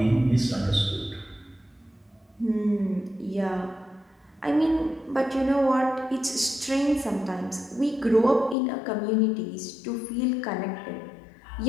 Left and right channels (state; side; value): drops out; right; at 8.6 s